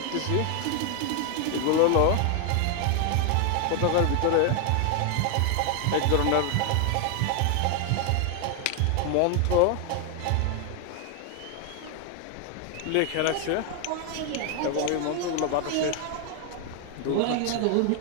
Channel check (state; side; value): different; both; correlation 0.01